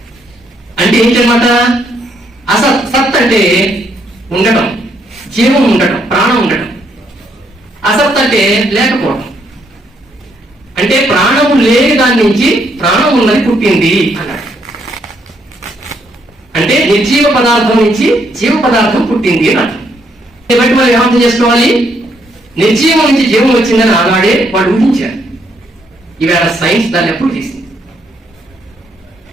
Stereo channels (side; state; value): both; normal; correlation 0.73